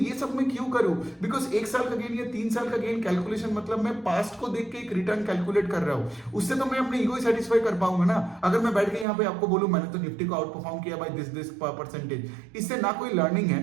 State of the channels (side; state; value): left; drops out; at 9.1 s